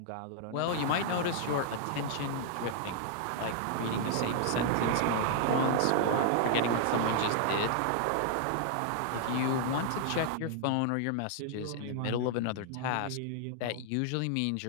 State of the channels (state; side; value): different; both; correlation -0.01